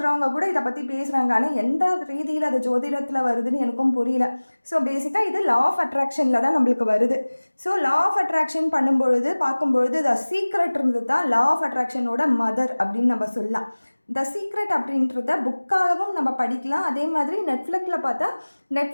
கூட இதை பற்றி பேசுகிறாங்க. ஆனால் எந்த ரீதியில் அது ஜோதிடத்தில் வருதுன்னு எனக்கும் புரியல. ஸோ பேசிக்காக இது லா ஆஃப் அட்ராக்ஷனில் தான் நம்மளுக்கு வருது. ஸோ லா ஆஃப் அட்ராக்ஷன் பண்ணும்பொழுது பார்க்கும்பொழுது த சீக்ரெட் இருந்தது தான் லா ஆஃப் அட்ராக்ஷனோட மதர் அப்படின்னு நம்ம சொல்லலாம். த சீக்ரெட் அப்படின்றத புக்காகவும் நம்ம படிக்கலாம். அதே மாதிரி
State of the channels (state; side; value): inverted; both; correlation -1.00